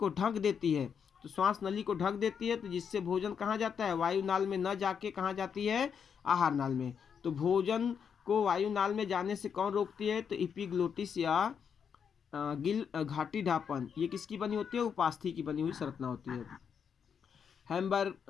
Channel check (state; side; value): quieter; right; 7.1 dB